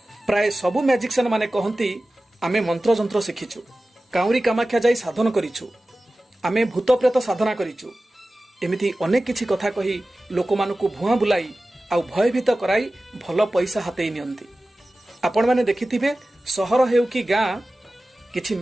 प्राय सबु मैजिशियन माने कहंती आमे मंत्र जंत्र शिखिछु काउरी कामाख्या जाई साधन करिछु आमे भूत प्रेत साधना करिछु एमिति अनेक किछि कथा कही लोक मानकु भुआ बुलाई आउ भयभीत कराई भलो पैसा हातेई नियंती। आपण माने देखिथिबे सहर हेउ कि गां किछि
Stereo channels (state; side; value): normal; both; correlation 0.96